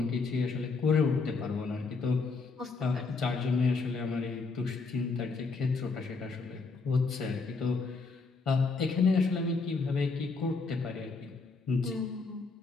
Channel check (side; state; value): right; quieter; 4.3 dB